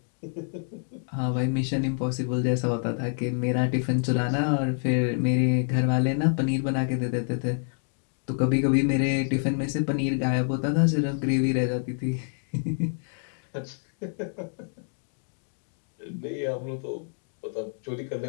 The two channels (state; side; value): silent; right; digital silence